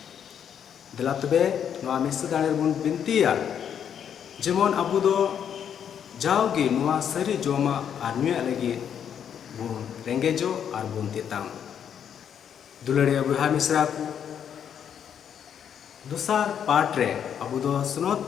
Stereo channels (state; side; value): quieter; right; 8.5 dB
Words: दिला तबे नुआ मिस दाड़े बुन बिनतिया जेमन अबु दो जाओगे नुआ सरी जोमा और न्यूया लगी बुन रेंगेजो और बुन तिताम दुलड़िया बुहा मिश्रा को दूसर पार्ट रे अबु दो सुनोत